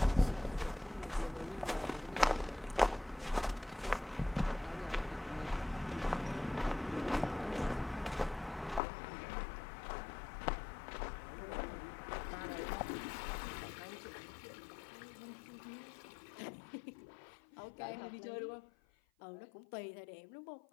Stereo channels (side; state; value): right; drops out; at 8.8 s